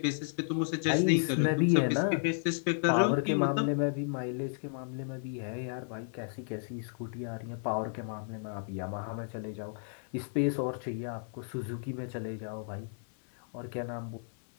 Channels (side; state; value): right; silent; 56 dB below the other